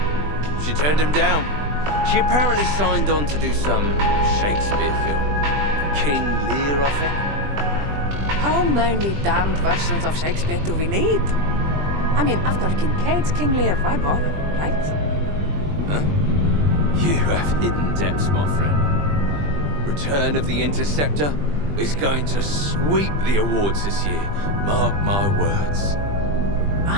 She turned him down. She apparently signed on to do some Shakespeare film. King Lear, I think. How many damned versions of Shakespeare do we need? I mean, after Kincaid's King Lear, why bother, right? Huh? You have hidden depths, my friend. Return of the Interceptor is going to sweep the awards this year. Mark my words.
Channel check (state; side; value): late; left; 20 ms